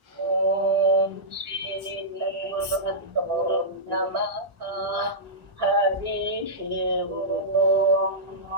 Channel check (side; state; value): left; late; 1.4 ms